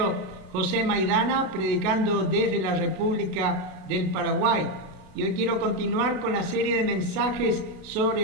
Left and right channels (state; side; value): late; left; 32 ms